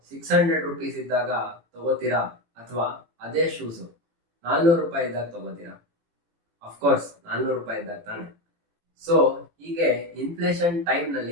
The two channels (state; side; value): late; left; 18 ms